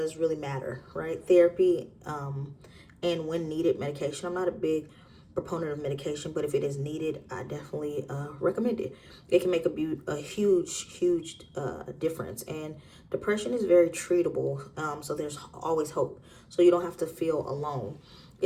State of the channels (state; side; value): identical; both; correlation 1.00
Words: really matter, right? Therapy, and when needed, medication. I'm not a big proponent of medication, but if it is needed, I definitely recommend it. It can make a huge difference. And depression is very treatable, so there's always hope. So you don't have to feel alone.